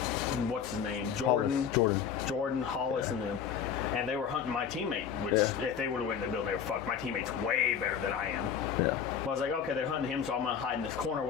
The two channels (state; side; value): quieter; right; 7.7 dB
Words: what's his name? Jordan, Hollis, and them. And they were hunting my teammate, which if they would have went in the building, they were fucked. My teammate's way better than I am. Yeah. Well, I was like, okay, they're hunting him, so I'm going to hide in this corner,